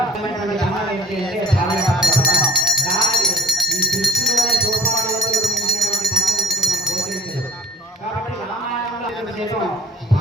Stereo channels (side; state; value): both; normal; correlation 0.50